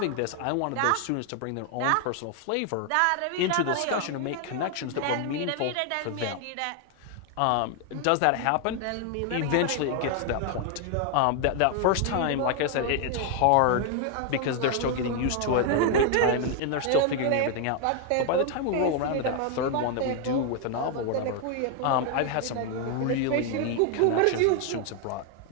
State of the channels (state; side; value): different; both; correlation 0.00